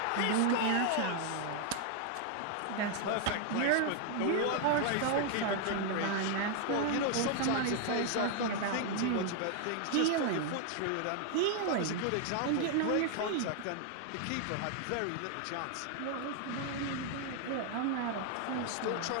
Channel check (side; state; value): both; different; correlation 0.00